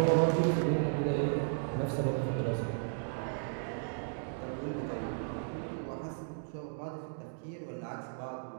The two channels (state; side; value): silent; left; digital silence